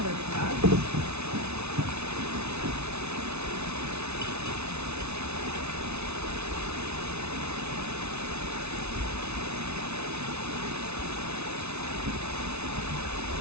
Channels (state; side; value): late; left; 0.81 ms